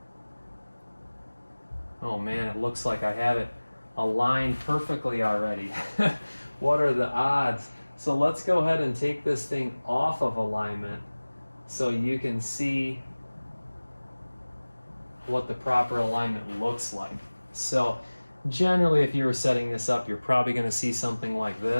Oh man, it looks like I have it aligned perfectly already. What are the odds? So let's go ahead and take this thing off of alignment so you can see what the proper alignment looks like. So generally, if you were setting this up, you're probably going to see something like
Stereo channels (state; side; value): inverted; both; correlation -1.00